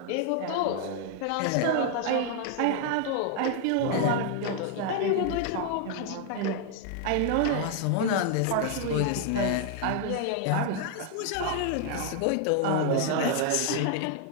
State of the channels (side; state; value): both; different; correlation 0.00